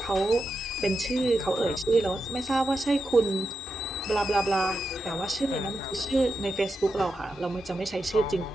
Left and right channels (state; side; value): normal; both; correlation 0.88